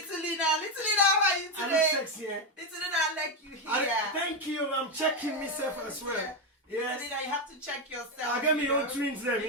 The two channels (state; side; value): normal; both; correlation 0.07